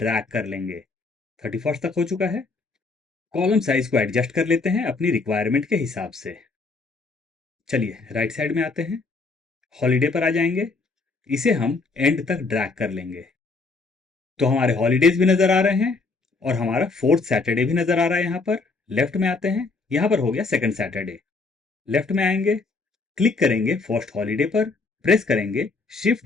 कर लेंगे। 31st तक हो चुका है। कॉलम साइज को एडजस्ट कर लेते हैं अपनी रिक्वायरमेंट के हिसाब से। चलिए राइट साइड में आते हैं, हॉलीडे पर आ जाएंगे, इसे हम एंड तक ड्रैग कर लेंगे। तो हमारे हॉलीडेज भी नजर आ रहे हैं और हमारा 4th सैटरडे भी नजर आ रहा है। यहां पर लेफ्ट में आते हैं, यहां पर हो गया 2nd सैटरडे। लेफ्ट में आएंगे, क्लिक करेंगे फर्स्ट हॉलीडे पर, प्रेस करेंगे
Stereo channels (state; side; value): quieter; right; 3.9 dB